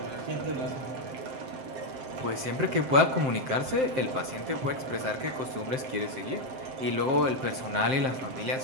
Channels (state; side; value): late; left; 7.7 ms